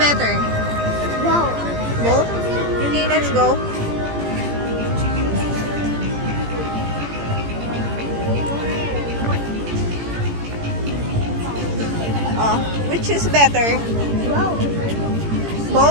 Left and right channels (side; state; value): left; late; 18 ms